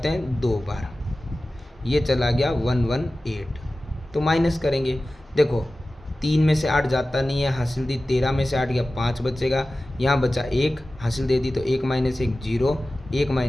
हैं 2 बार, ये चला गया 118, तो माइनस करेंगे। देखो 3 में से 8 जाता नहीं है, हासिल दी 13 में से 8 गया 5 बचेगा, यहाँ बचा 1, हासिल दे दी तो 1 माइनस 1 0, 1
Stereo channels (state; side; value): normal; both; correlation 0.96